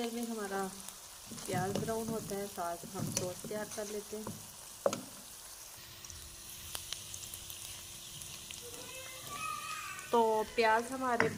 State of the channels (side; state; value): both; identical; correlation 1.00